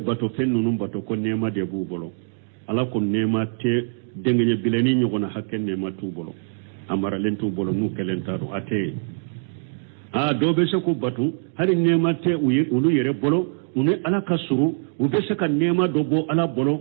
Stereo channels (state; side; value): silent; left; digital silence